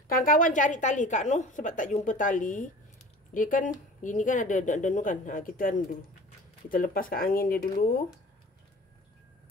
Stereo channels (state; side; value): normal; both; correlation 0.42